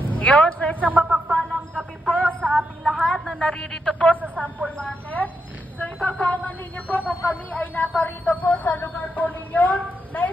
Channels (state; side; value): normal; both; correlation 0.83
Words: Yun, so isang mapagpalang gabi po sa ating lahat na naririto po sa Sample Market. So ipagkaungan ninyo po kung kami ay naparito po sa lugar po ninyo.